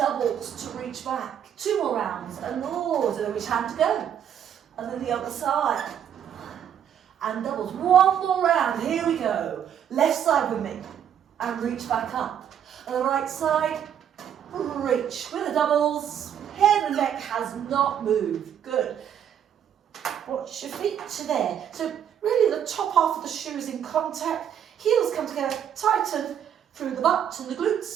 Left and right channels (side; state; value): left; quieter; 9.2 dB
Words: to reach back. 2 more rounds, and don't know which hand to go. And then the other side. And doubles. 1 more round, here we go. Left side with me, and reach back up. And the right side, reach. With the doubles, head and neck has not moved. Good. Watch your feet to there. So really the top half of the shoe is in contact. Heels come together, tighten through the butt and the